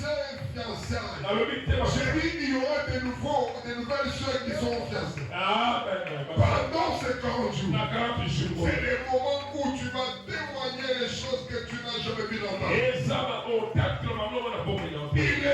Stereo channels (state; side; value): identical; both; correlation 1.00